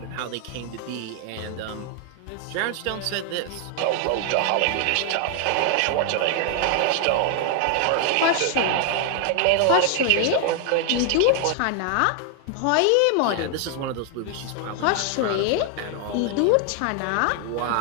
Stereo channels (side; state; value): both; different; correlation 0.00